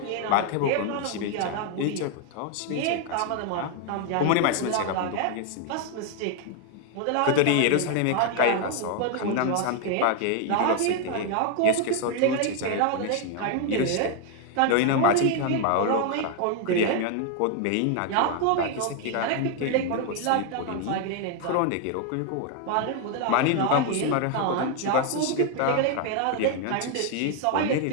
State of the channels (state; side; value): different; both; correlation 0.01